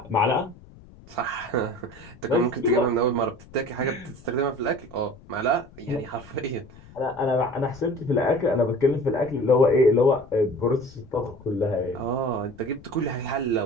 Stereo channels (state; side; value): noise; left; rumble, 21 dB below the sound